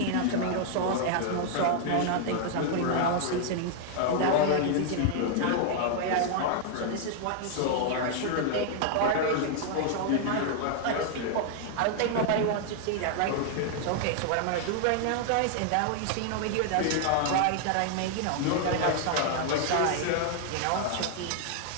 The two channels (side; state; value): both; different; correlation -0.01